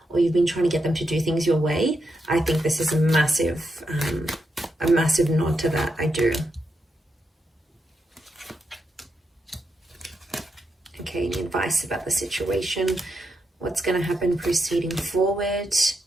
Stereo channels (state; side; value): normal; both; correlation 0.84